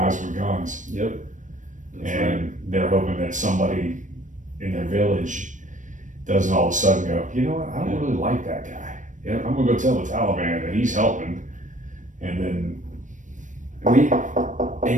with guns, Yep. That's and right. they're hoping that somebody in their village doesn't all of a sudden go, you know what, I don't really like that guy. Yep. I'm gonna go tell the Taliban that he's helping, and then,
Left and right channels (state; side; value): late; left; 0.37 ms